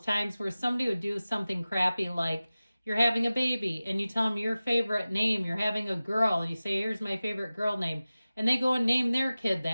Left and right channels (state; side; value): inverted; both; correlation -0.96